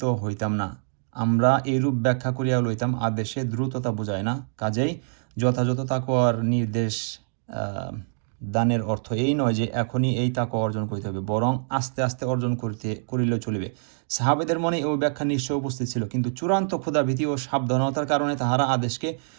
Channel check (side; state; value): left; silent; digital silence